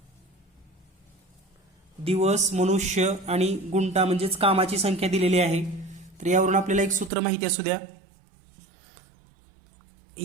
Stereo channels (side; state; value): left; drops out; at 7.1 s